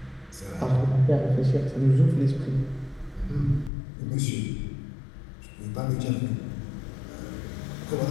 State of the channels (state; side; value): drops out; right; at 3.7 s